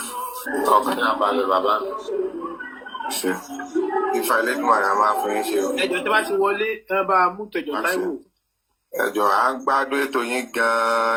ọkàn náà balẹ̀ bàbá mi. Ìfà Elédùn àrà máa fún yín ṣe o. Ẹjọ́ tí wọ́n ti wọlé ẹ bá mú tẹ̀jọ́ Táíwò. Ẹjọ́ à ń gbádùn ètò yín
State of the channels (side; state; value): both; identical; correlation 1.00